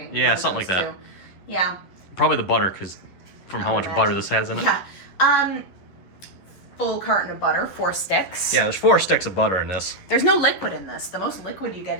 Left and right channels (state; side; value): late; right; 11 ms